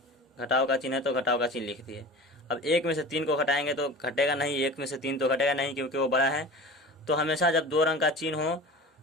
घटाव का चिन्ह है तो घटाव का चिन्ह लिख दिए। अब 1 में से 3 को घटाएंगे तो घटेगा नहीं, 1 में से 3 तो घटेगा नहीं क्योंकि वो बड़ा है। तो हमेशा जब दो रंग का चिन्ह हो,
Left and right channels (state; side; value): normal; both; correlation 0.36